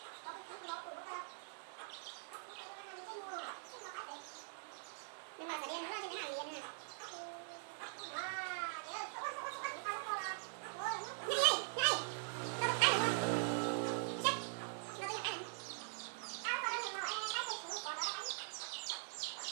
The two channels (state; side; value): silent; left; digital silence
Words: nhưng mà phải đen nữa chứ cái nào liền nè.